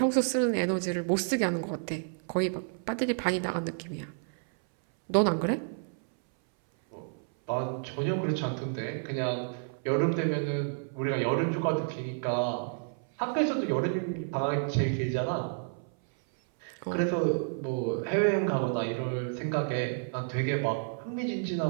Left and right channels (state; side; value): silent; left; 58 dB below the other